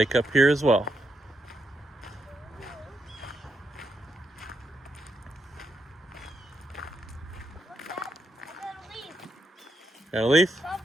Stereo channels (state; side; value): normal; both; correlation 0.81